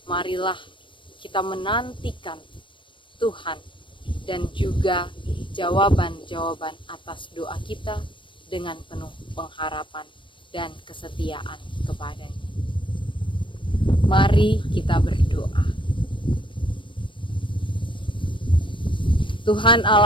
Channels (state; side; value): late; right; 0.24 ms